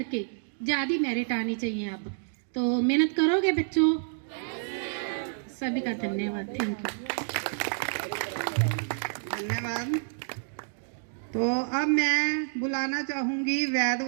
के ज़्यादा मेरिट आनी चाहिए। अब तो मेहनत करोगे बच्चों? सभी का धन्यवाद। Thank you. धन्यवाद। तो अब मैं बुलाना चाहूंगी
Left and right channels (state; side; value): silent; left; digital silence